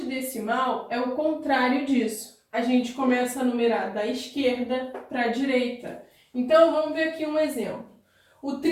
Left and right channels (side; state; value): both; identical; correlation 1.00